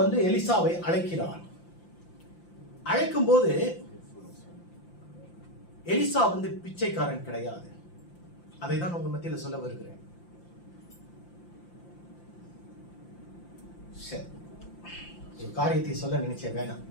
எலிசாவை அழைக்கிறான். அழைக்கும் போது எலிசா பிச்சைக்காரன் கிடையாது. அதை தான் உங்க மத்தியில சொல்ல வருகிறேன். ஒரு காரியத்தை சொல்ல நினைச்சேன், வேணாம்.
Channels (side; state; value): right; late; 5.8 ms